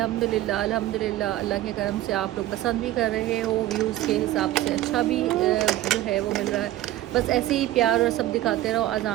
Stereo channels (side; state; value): left; quieter; 14.8 dB